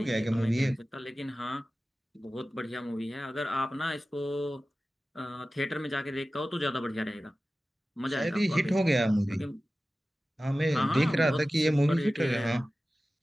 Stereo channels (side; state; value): both; normal; correlation 0.96